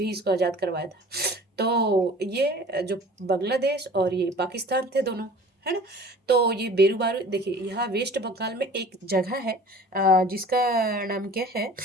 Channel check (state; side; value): normal; both; correlation 0.45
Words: इसको आज़ाद करवाया था। तो ये जो बांग्लादेश और ये पाकिस्तान थे दोनों, है ना। तो ये बेरूबारू देखिए, यहाँ वेस्ट बंगाल में एक जगह है जिसका नाम क्या है,